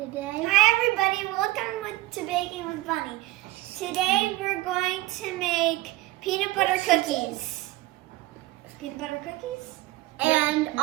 Hi, everybody. Welcome to Baking with Bunny. Today we're going to make peanut butter cookies. Peanut butter cookies? And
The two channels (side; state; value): left; quieter; 18.4 dB